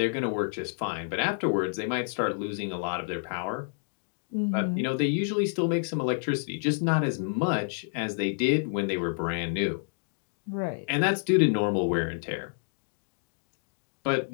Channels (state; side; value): silent; right; digital silence